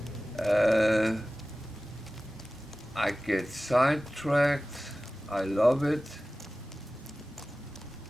I get sidetracked. I love it.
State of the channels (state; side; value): normal; both; correlation 0.97